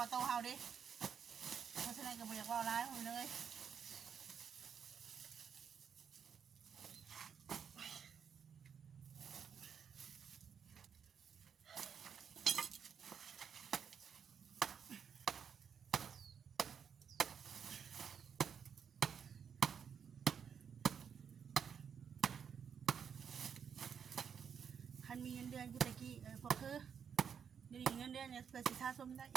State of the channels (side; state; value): left; quieter; 7.3 dB